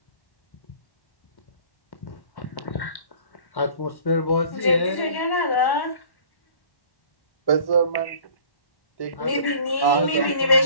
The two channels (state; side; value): late; right; 1.1 ms